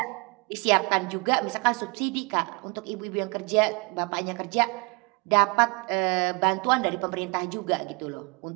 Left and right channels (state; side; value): quieter; left; 30.8 dB